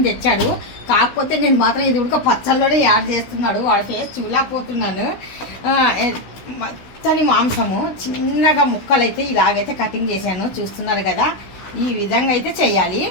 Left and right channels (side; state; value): right; late; 16 ms